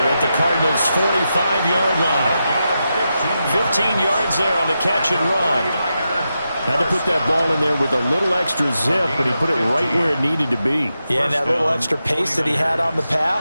at the Cardinals' 45-yard line. 15 yards there on the catch and run. Had to put that ball in there with a little extra zip, but he put it right where it needed to be. Yeah, and that little extra pace that he had on the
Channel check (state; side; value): inverted; both; correlation -0.88